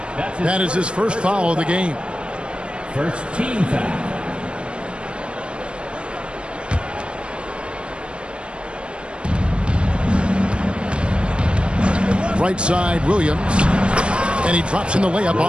That is his first foul of the game. First team foul. Right side, Williams. And he drops in the layup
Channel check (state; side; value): late; left; 0.056 ms